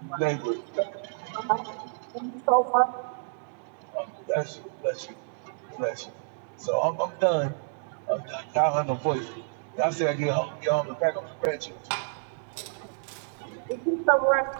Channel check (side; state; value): left; silent; digital silence